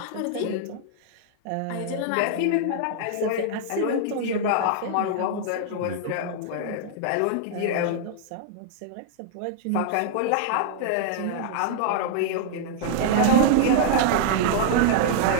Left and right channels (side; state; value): both; different; correlation -0.01